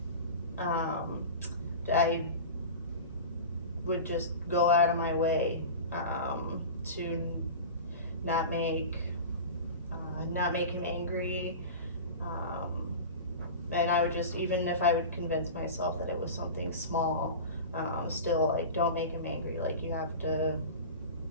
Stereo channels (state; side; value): inverted; both; correlation -0.32